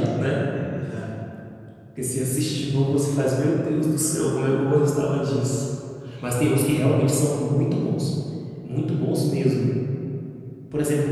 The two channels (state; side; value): identical; both; correlation 1.00